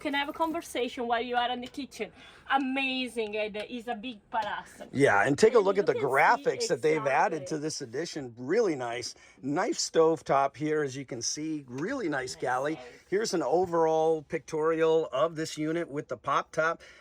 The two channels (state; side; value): identical; both; correlation 1.00